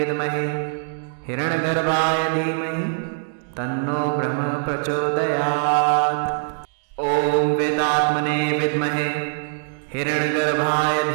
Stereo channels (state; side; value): silent; left; digital silence